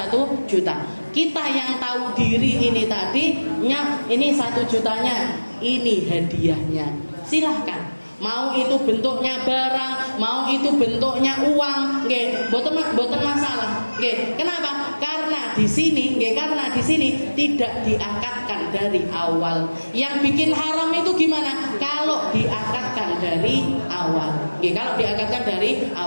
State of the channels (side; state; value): both; inverted; correlation -1.00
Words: juta. Kita yang tahu diri ini tadinya, ini 1 jutanya, ini hadiahnya. Silahkan. Mau itu bentuknya barang, mau itu bentuknya uang, nggih, boten masalah. Nggih. Kenapa? Karena di sini tidak diakatkan dari awal. Yang bikin haram itu gimana? Kalau diakatkan dari awal. Nggih, kalau diakatkan dari